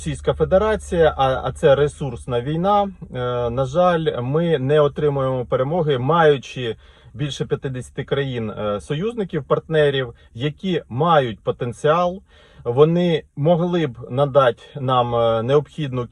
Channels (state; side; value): identical; both; correlation 1.00